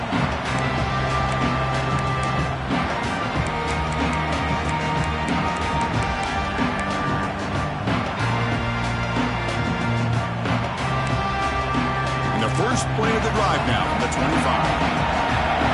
And the first play of the drive now from the 25.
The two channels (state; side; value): identical; both; correlation 1.00